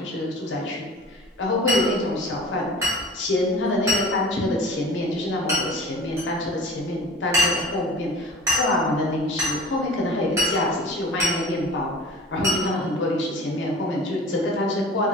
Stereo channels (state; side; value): normal; both; correlation 0.40